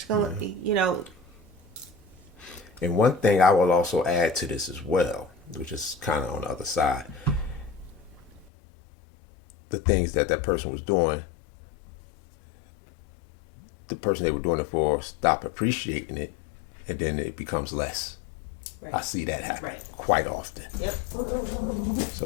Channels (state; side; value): drops out; right; at 8.5 s